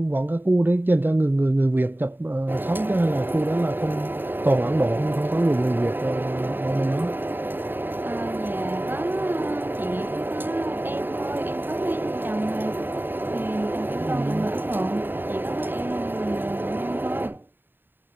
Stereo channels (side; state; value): left; late; 0.095 ms